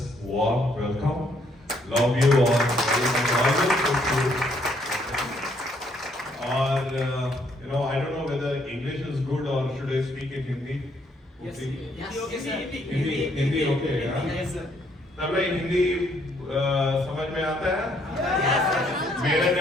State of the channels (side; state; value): both; normal; correlation 0.69